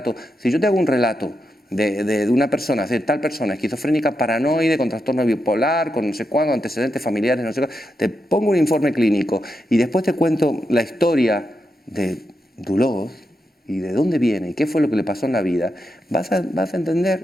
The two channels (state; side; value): normal; both; correlation 0.85